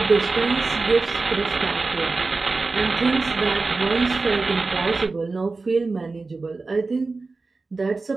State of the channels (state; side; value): quieter; left; 3.8 dB